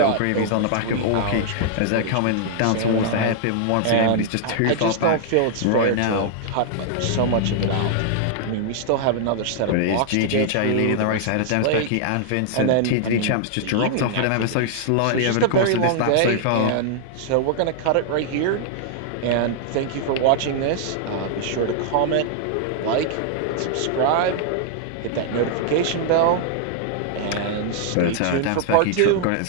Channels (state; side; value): different; both; correlation -0.01